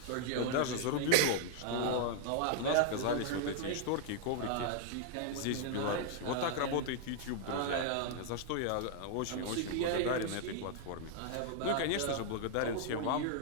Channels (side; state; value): both; different; correlation -0.01